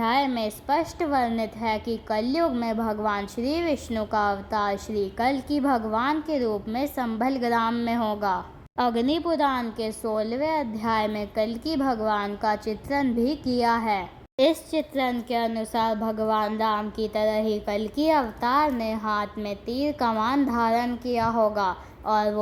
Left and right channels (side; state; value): both; identical; correlation 1.00